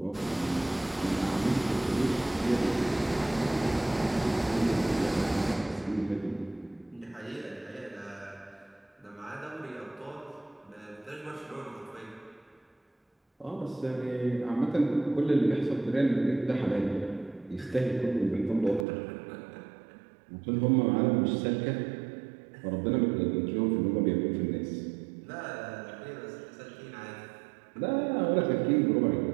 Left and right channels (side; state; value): left; drops out; at 18.9 s